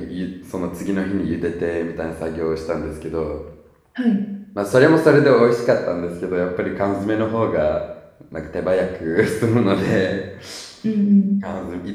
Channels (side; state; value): both; identical; correlation 1.00